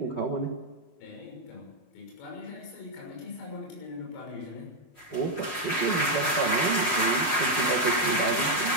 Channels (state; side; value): late; right; 12 ms